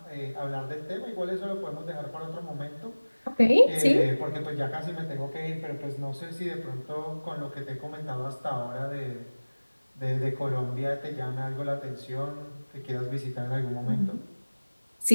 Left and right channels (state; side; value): inverted; both; correlation -1.00